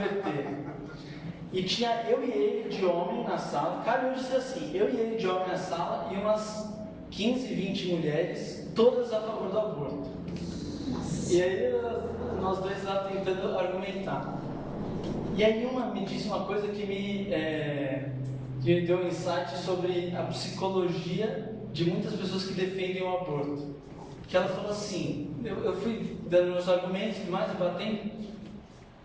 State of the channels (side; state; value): both; identical; correlation 1.00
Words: e tinha eu e ele de homem na sala, cara, eu disse assim, eu e ele de homem na sala e umas 15, 20 mulheres, todas a favor do aborto. E aí nós dois lá tentando argumentar. E aí uma me disse uma coisa que me deu um insight sobre a psicologia de muitas pessoas que defendem o aborto. Que ela falou assim, eu fui dando meus argumentos e mais, batendo.